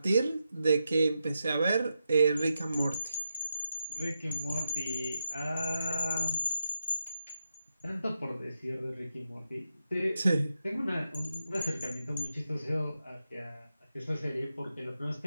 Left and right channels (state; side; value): inverted; both; correlation -0.88